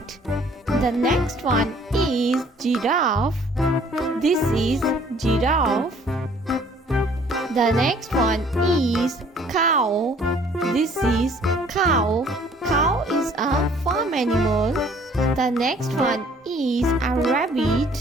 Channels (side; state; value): both; normal; correlation 0.57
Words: The next one is giraffe. This is giraffe. The next one is cow. This is cow. Cow is a farm animal. The next one is a rabbit.